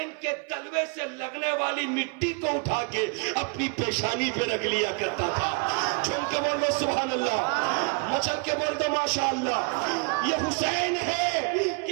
کے تلوے سے لگنے والی مٹی کو اٹھا کے اپنی پیشانی پہ رکھ لیا کرتا تھا. جھوم کے بول دو سبحان اللہ, مچل کے بول دو ماشاء اللہ. یہ حسین ہے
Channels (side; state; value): left; quieter; 35.3 dB